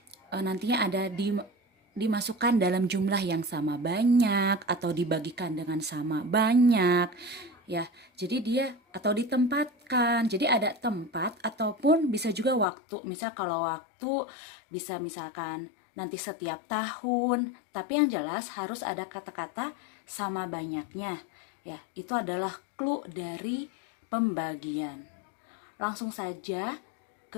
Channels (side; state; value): right; drops out; at 12.7 s